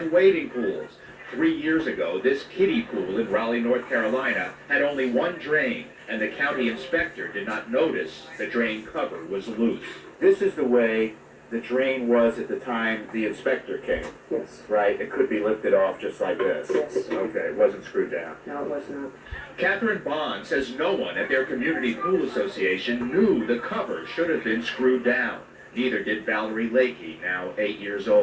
wading pools. 3 years ago, this kiddie pool in Raleigh, North Carolina had only one drain, and the county inspector did not notice the drain cover was loose. This is the way the drain was at the time the inspector came, Yes. right? It could be lifted off just like this. Yes. Okay, it wasn't screwed down. No, it was not. Catherine Bond says no one at their community pool association knew the cover should have been screwed down. Neither did Valerie Lakey, now 8 years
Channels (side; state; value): both; identical; correlation 1.00